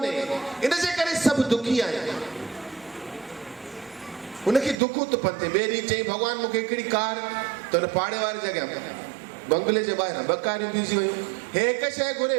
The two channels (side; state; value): left; drops out; at 4.8 s